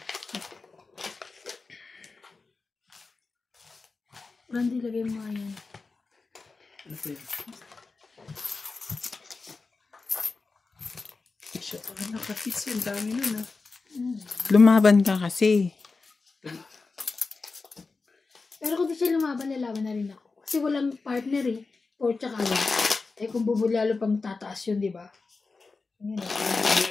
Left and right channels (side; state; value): right; quieter; 4.1 dB